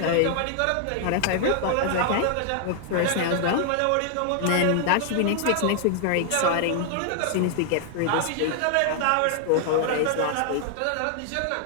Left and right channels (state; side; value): different; both; correlation 0.00